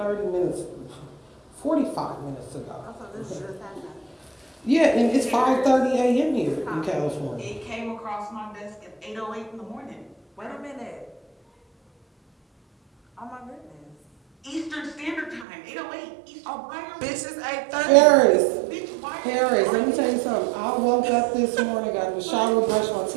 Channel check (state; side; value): drops out; left; at 15.5 s